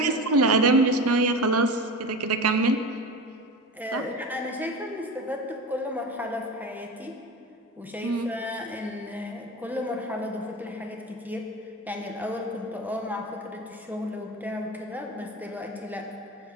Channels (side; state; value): both; normal; correlation 0.28